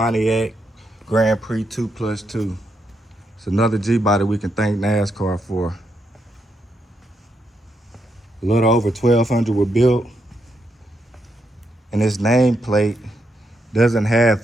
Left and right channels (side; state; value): both; normal; correlation 0.81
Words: Grand Prix 2+2. It's another G-body we can thank NASCAR for. A little over 1,200 were built, and its nameplate doesn't